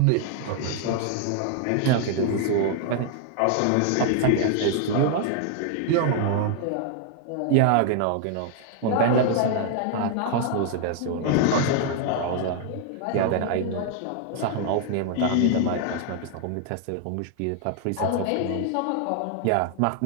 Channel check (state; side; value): different; both; correlation 0.00